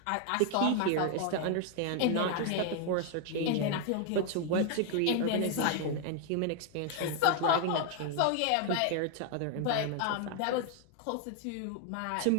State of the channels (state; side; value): different; both; correlation 0.00